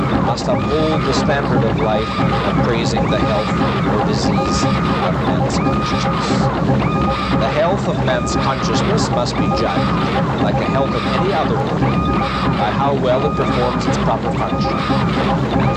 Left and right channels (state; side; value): identical; both; correlation 1.00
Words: must uphold the standard of life of praising the health or disease of man's consciousness. The health of man's consciousness must be judged, like the health of any other organ, by how well it performs its proper function. And